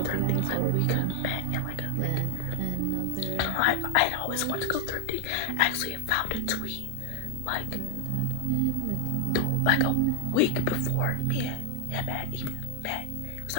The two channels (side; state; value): both; different; correlation 0.00